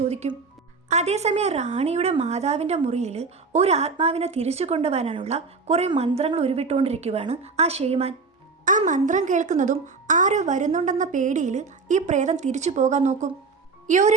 അതേസമയം റാണിയുടെ മാതാവിൻ്റെ മുറിയിൽ ഒരു ആത്മാവിനെ തിരിച്ചു കൊണ്ടുവരാനുള്ള കുറേ മന്ത്രങ്ങൾ ഉരുവിട്ടുകൊണ്ടിരിക്കുകയാണ് ആ ഷെയ്മാൻ. ആ മന്ത്രം കേൾക്കുന്നതും ആരോ വരുന്നുണ്ടെന്ന പേടിയിൽ ഈ പ്രേതം തിരിച്ചു പോകാൻ നോക്കും. യോരി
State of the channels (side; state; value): left; quieter; 4.5 dB